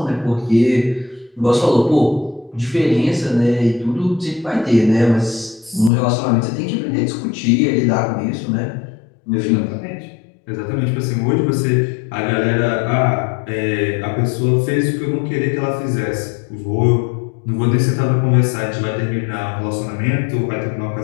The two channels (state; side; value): drops out; right; at 5.9 s